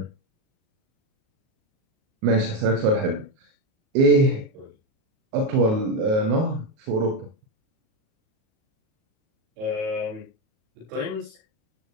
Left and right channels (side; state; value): left; late; 37 ms